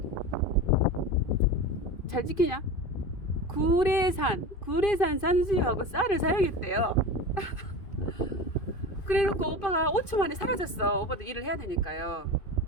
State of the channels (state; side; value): late; right; 2.5 ms